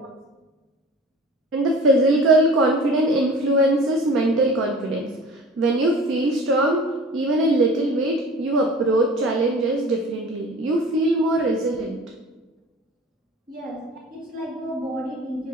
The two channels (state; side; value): normal; both; correlation 0.42